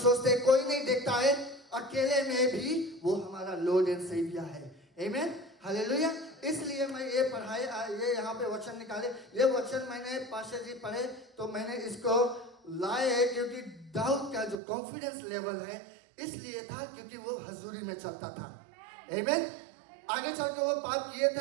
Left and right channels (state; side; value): drops out; left; at 14.6 s